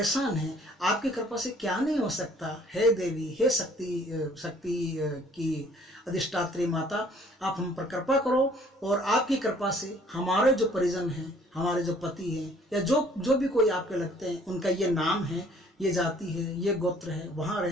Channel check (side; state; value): both; normal; correlation 0.57